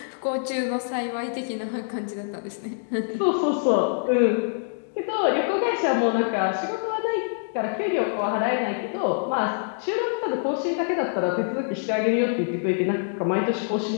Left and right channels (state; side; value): silent; right; digital silence